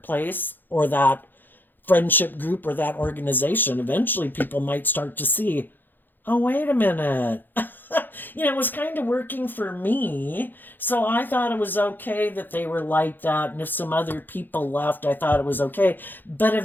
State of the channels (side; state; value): right; late; 0.091 ms